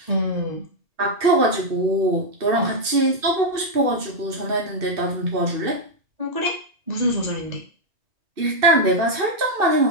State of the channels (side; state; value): left; late; 2.6 ms